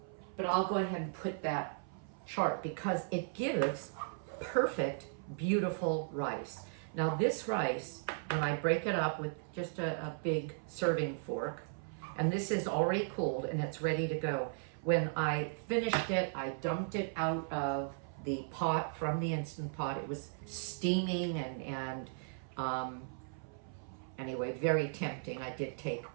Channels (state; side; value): silent; left; 53 dB below the other